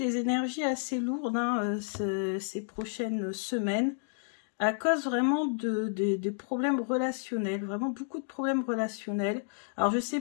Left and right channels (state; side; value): silent; right; digital silence